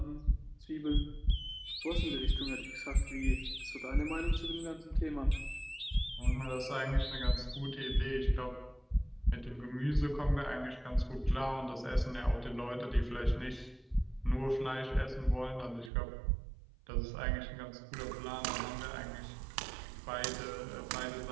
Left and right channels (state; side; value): drops out; left; at 15.9 s